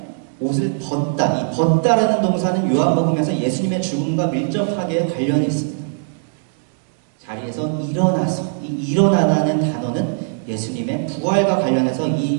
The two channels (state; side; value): silent; left; digital silence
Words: 옷을 벗다. 이 벗다라는 동사는 요한복음에서 예수님의 죽음과 밀접하게 관련이 있습니다. 자리에서 일어나서, 이 일어나라는 단어는 예수님의 부활과 관련해서